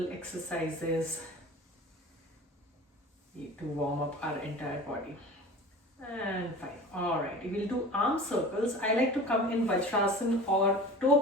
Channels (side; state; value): both; normal; correlation 0.38